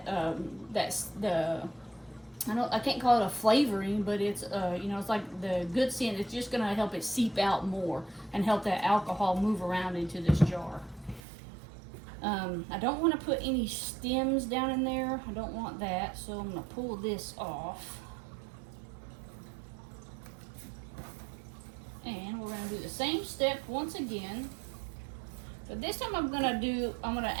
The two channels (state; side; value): drops out; left; at 11.2 s